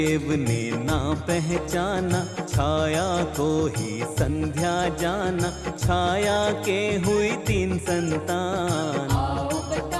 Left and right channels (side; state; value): both; identical; correlation 1.00